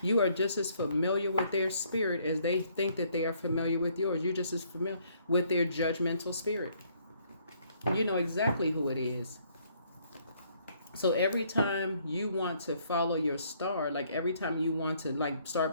You are just as familiar with their spirit as they think that they are familiar with yours. You're just as familiar with their judgmental spirit. You know exactly who it is. So every time you want to follow your star, like every time you want to like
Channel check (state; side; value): inverted; both; correlation -0.66